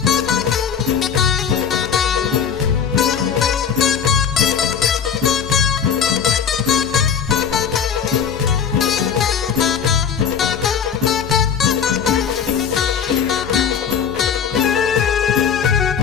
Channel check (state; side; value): quieter; right; 7.5 dB